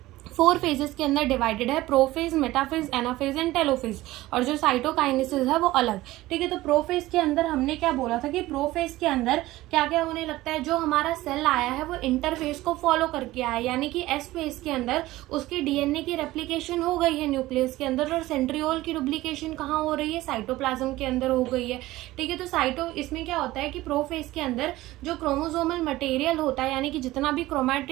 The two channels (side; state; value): left; quieter; 17.4 dB